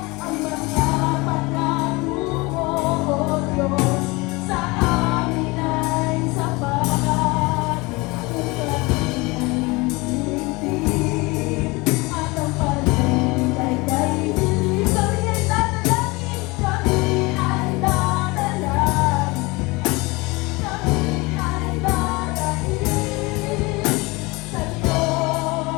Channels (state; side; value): quieter; right; 24.5 dB